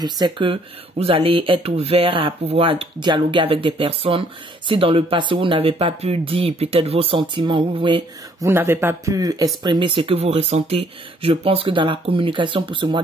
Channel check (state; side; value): normal; both; correlation 0.64